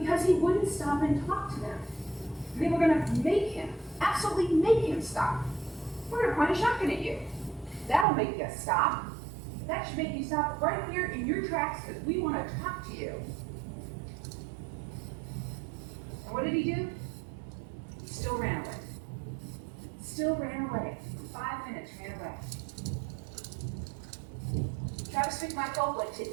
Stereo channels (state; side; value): drops out; left; at 8.1 s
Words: he wouldn't stop and talk to them. They were going to make him, absolutely make him stop. We're going to point a shotgun at you. That'll make you stop. That should make you stop right here in your tracks because we want to talk to you. And what did he do? He still ran away. Still ran away. For 5 minutes, ran away. Travis McMichael went